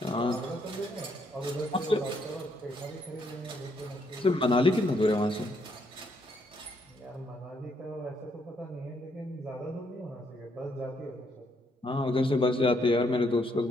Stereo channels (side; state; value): both; normal; correlation 0.73